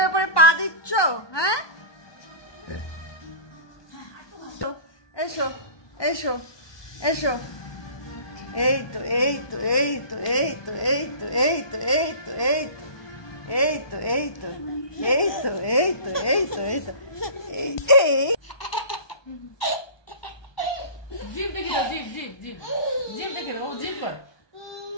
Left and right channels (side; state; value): right; late; 1.2 ms